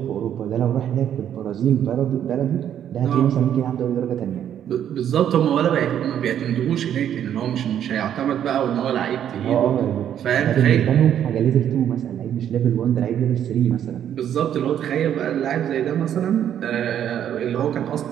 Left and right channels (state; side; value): quieter; left; 9.9 dB